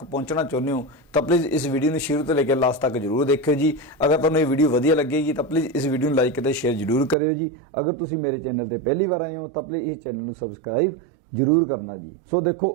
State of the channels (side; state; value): left; drops out; at 7.2 s